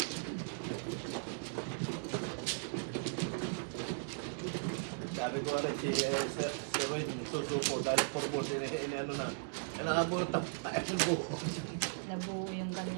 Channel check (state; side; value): silent; left; digital silence